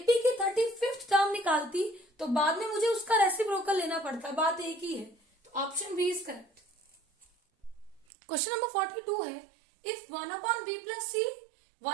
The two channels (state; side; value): drops out; left; at 8.1 s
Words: की 35th टर्म निकालती तो बाद में मुझे उसका रेसिप्रोकल लेना पड़ता, बात एक ही है। तो option B is correct. Question number 42 है, if 1/b plus c,